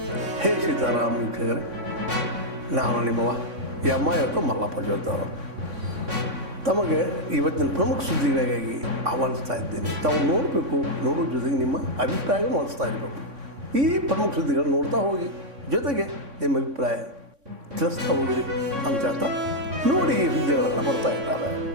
ಹೇ ಸೀತಾರಾಮ್ ವೀಕ್ಷಕರೇ, ನಾನು ನಿಮ್ಮವ ಇವತ್ತು ಮಲ್ಲಪ್ಪ ಜೋದ್ದವರು ತಮಗೆ ಇವತ್ತಿನ ಪ್ರಮುಖ ಸುದ್ದಿಗಳಿಗಾಗಿ ಆಹ್ವಾನಿಸ್ತಾ ಇದ್ದೇನೆ. ತಾವು ನೋಡಬೇಕು, ನೋಡೋ ಜೊತೆಗೆ ನಿಮ್ಮ ಅಭಿಪ್ರಾಯ ಮಾಡಿಸ್ತಾ ಇರಬೇಕು. ಈ ಪ್ರಮುಖ ಸುದ್ದಿಗಳು ನೋಡ್ತಾ ಹೋಗಿ, ಜೊತೆಗೆ ನಿಮ್ಮ ಅಭಿಪ್ರಾಯ ತಿಳಿಸ್ತಾ ಹೋಗ್ರಿ ಅಂತ ಹೇಳ್ತಾ ನೋಡಿ ಈ ಸುದ್ದಿಗಳೆಲ್ಲ ಬರ್ತಾ ಇದ್ದಾರೆ.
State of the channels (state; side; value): late; left; 3.6 ms